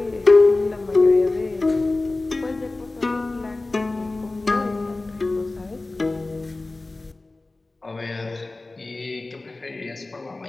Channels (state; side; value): quieter; right; 3.1 dB